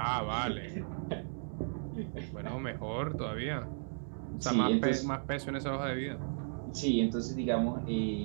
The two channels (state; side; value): silent; left; digital silence